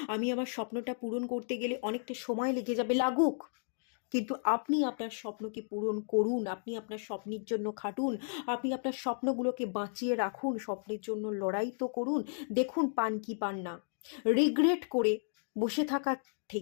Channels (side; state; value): right; silent; digital silence